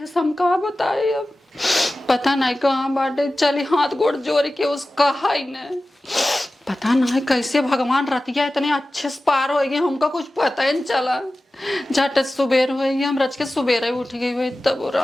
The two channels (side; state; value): both; normal; correlation 0.95